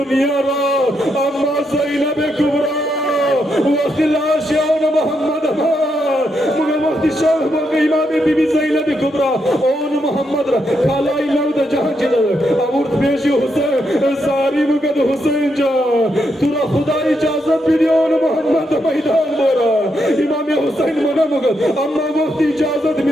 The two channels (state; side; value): normal; both; correlation 0.80